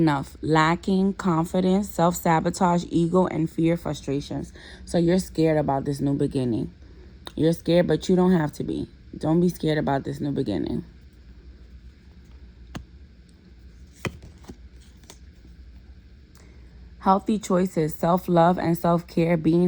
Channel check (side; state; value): both; identical; correlation 1.00